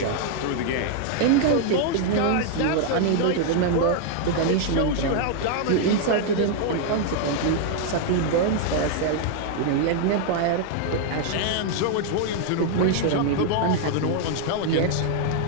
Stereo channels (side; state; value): both; different; correlation 0.00